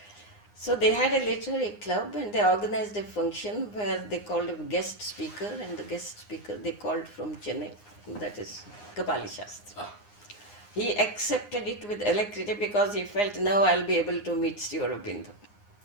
So they had a literary club, and they organized a function where they called a guest speaker, and the guest speaker they called from Chennai, that is Kapali Shastri. He accepted it with alacrity, because he felt, now I'll be able to meet Sri Aurobindo.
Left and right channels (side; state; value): right; late; 9.7 ms